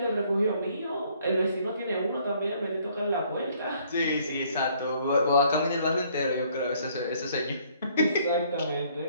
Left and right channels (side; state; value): both; inverted; correlation -0.63